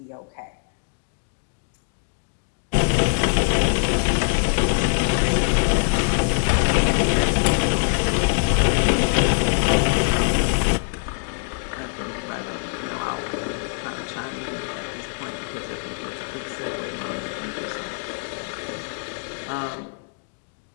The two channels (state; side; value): silent; right; digital silence